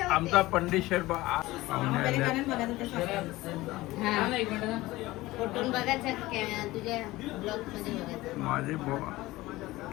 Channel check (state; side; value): quieter; right; 18.7 dB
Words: पंडित शेठ माझे